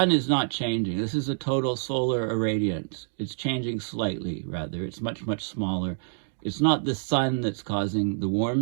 is not changing. This is a total solar irradiance. It's changing slightly, rather. It's much, much smaller. It's not the sun that's causing the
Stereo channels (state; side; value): silent; left; digital silence